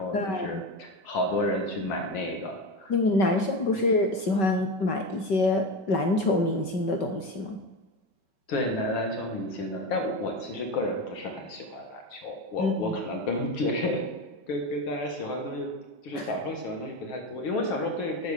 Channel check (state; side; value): late; right; 5.2 ms